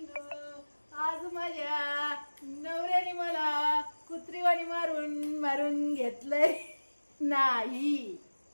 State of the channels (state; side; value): inverted; both; correlation -1.00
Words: आज माझ्या नवऱ्याने मला कुत्रीवाणी मारून मारून घेतलंय. नाही,